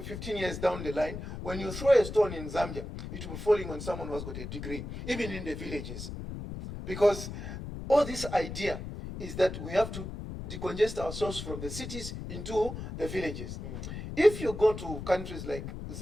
15 years down the line, when you throw a stone in Zambia, it will be falling on someone who has got a degree, even in the villages. Because all this idea is that we have to decongest ourselves from the cities into the villages. If you go to countries like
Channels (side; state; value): left; noise; rumble, 8 dB below the sound